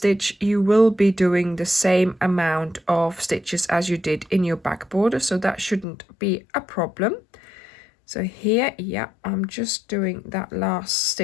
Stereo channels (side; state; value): right; drops out; at 5.9 s